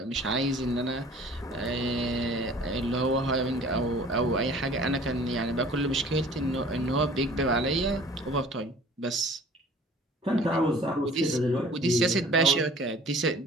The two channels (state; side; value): normal; both; correlation 0.49